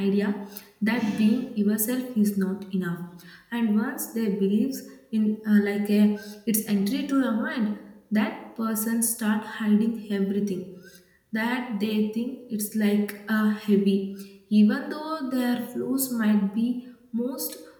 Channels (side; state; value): both; identical; correlation 1.00